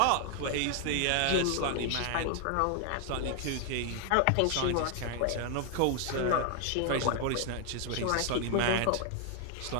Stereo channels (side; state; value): both; different; correlation 0.00